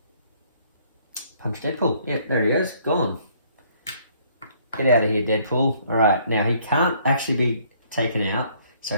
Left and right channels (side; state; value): both; inverted; correlation -0.63